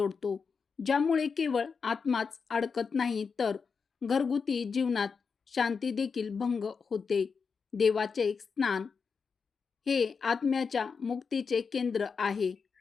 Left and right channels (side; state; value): right; quieter; 5.5 dB